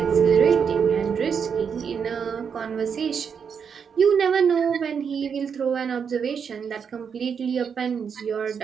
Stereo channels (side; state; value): left; quieter; 6.8 dB